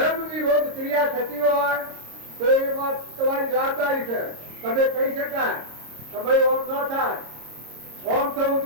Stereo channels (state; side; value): late; left; 26 ms